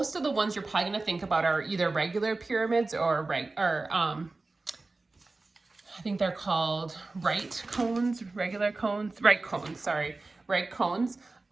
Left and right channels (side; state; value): left; quieter; 3.4 dB